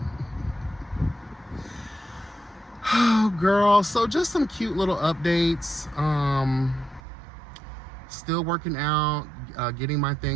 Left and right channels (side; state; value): left; drops out; at 7.0 s